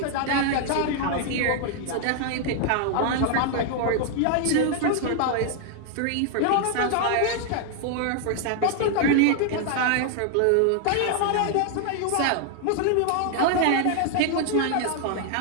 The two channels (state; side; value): different; both; correlation 0.00